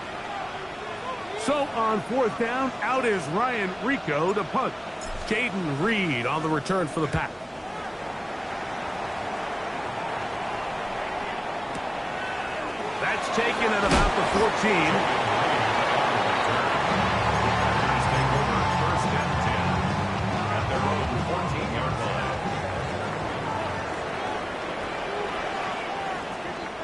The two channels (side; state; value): both; identical; correlation 1.00